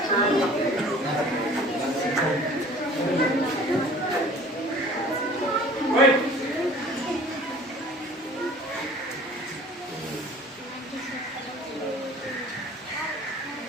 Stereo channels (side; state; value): both; normal; correlation 0.47